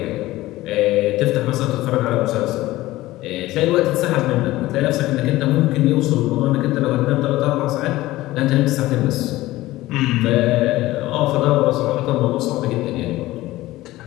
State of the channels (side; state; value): right; quieter; 17.3 dB